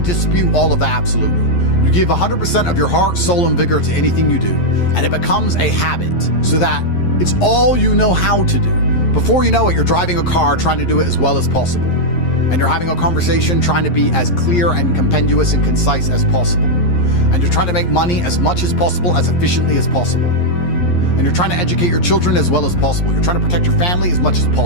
dispute all of that absolutely. You give 100% of your heart, soul, and vigor to anything you do, and it becomes a habit so that it's all you know how to do. Before you know it, you're driving a car trying to do it as well as possible. And you're having a conversation trying to be as clear and compendious and concise as possible. And you're trying to make money as much as possible, as efficiently as possible. And you're trying to educate your children as well as possible. You're trying to protect your family as much as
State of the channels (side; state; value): right; late; 11 ms